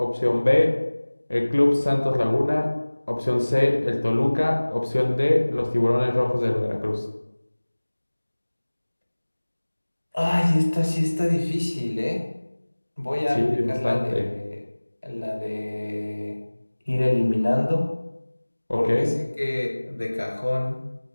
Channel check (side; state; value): both; inverted; correlation -1.00